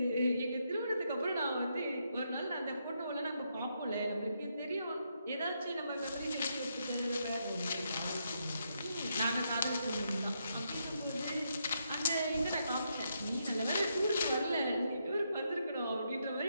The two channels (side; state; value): both; inverted; correlation -0.79